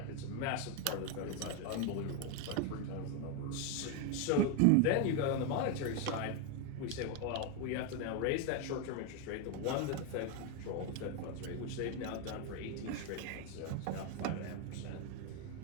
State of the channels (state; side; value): different; both; correlation 0.02